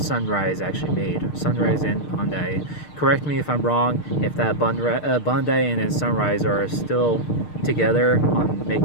actually made. Sunrise and Bandai. Correct me if I'm wrong. If that Bandai and then Sunrise are still together on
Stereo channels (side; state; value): right; late; 6.6 ms